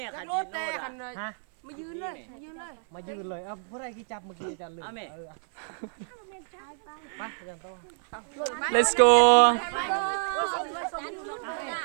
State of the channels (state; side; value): silent; left; 59 dB below the other